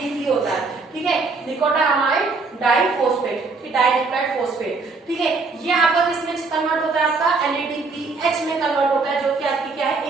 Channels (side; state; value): left; quieter; 4.0 dB